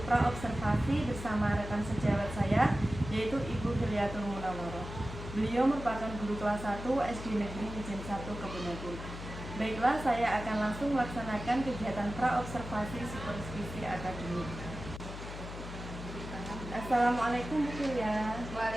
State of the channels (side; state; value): left; noise; hum, 10 dB below the sound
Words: pra-observasi bersama rekan sejawat saya, yaitu Ibu Hilyatul Munawwaroh. Beliau merupakan guru kelas 1 SD Negeri Mijen 1 Kebunagung. Baiklah, saya akan langsung melaksanakan kegiatan pra-observasi supervisi akademik. Assalamualaikum Bu Hilya.